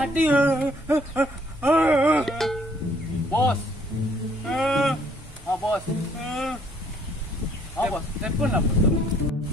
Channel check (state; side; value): normal; both; correlation 0.64